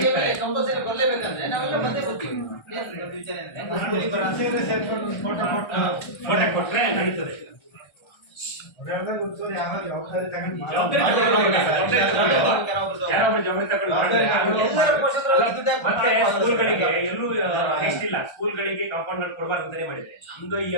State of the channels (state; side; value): late; right; 1.3 ms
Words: ಸಿಗ್ತಾರೆ. ಕಂಪಲ್ಸರಿ ಬರ್ಲೇಬೇಕಂದ್ರೆ ನಾವೆಲ್ಲ ಬಂದೇ ಬರ್ತೀವಿ. ವಿಚಾರ ಫೋಟೋ ಕೊಟ್ರೆ ನಡೀತದೆ. ಜವಾಬ್ದಾರಿ ಜವಾಬ್ದಾರಿ ಯಾರೊಬ್ರು ಜವಾಬ್ದಾರಿ ತಗೊಂಡು ಮಾಡಿದ್ರೆ ಮತ್ತೆ ಸ್ಕೂಲ್ಗಳಿಗೆ ಎಲ್ಲೂ ನೆಕ್ಸ್ಟ್ ಇಲ್ಲ, ಸ್ಕೂಲ್ಗಳಿಗೆ ಕಾಂಪೌಂಡ್ ಕೊಡಬಾರ್ದು ಅಂತಾನೆ ಮಾಡಿದ್ರೆ. ನಮ್ದು ಈ